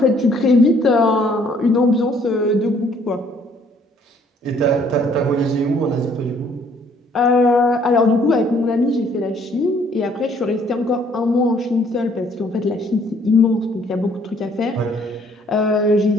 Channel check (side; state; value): both; normal; correlation 0.62